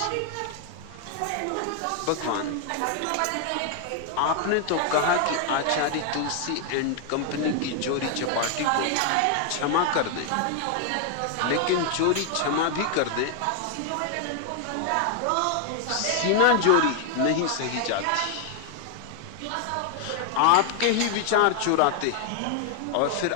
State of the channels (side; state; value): both; different; correlation 0.00